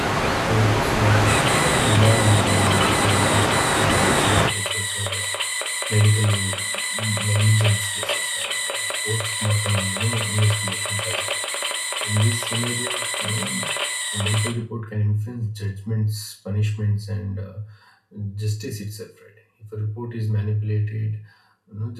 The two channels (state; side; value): identical; both; correlation 1.00